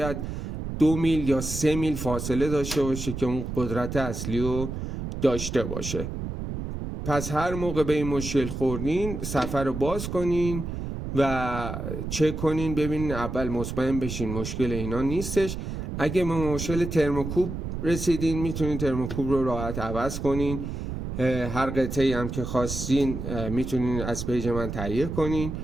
2 میل یا 3 میل فاصله داشته باشه که اون قدرت اصلی رو داشته باشه. پس هر موقع به این مشکل خوردین صفحه رو باز کنین و چک کنین، ببینین اول مطمئن بشین مشکل اینا نیستش. اگه به مشکل ترموکوب رسیدین میتونین ترموکوب رو راحت عوض کنین. هر قطعه‌ای هم که خواستین میتونین از پیج من تهیه کنین.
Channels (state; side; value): noise; right; rumble, 5 dB below the sound